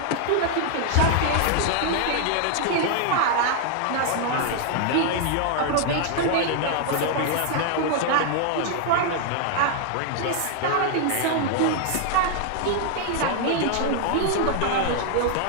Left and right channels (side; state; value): both; different; correlation 0.00